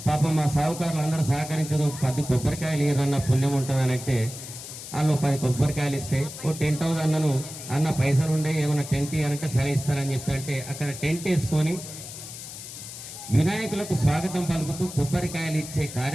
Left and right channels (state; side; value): noise; left; hiss, 11 dB below the sound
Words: పాపం మా సావుకారులు అందరూ సహకరించదు, 10 కొబ్బరికాయలు ఏదన్నా పుణ్యం ఉంటుందని అంటే వాళ్ళు 10 కొబ్బరికాయలు ఇస్తే ఓ టెంట్ హౌస్ అన్నను అన్న పైసలు ఉండే ఏమైనా టెంట్ ఇవ్వాలంటే సరే ఇస్తారని చెప్పి అంటే అక్కడ టెంట్ వేసుకొని వినాయకులకు స్వాగతం పలుకుతూ కొబ్బరికాయలు ఇచ్చే